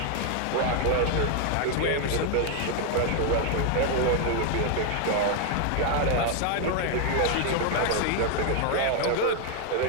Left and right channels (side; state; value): both; different; correlation 0.01